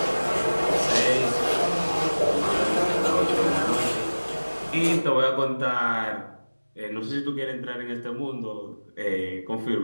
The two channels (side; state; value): both; inverted; correlation -1.00